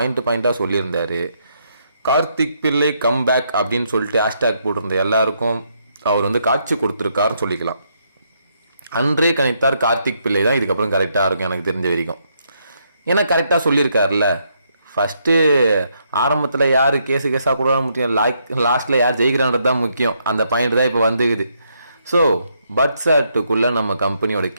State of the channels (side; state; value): both; inverted; correlation -0.76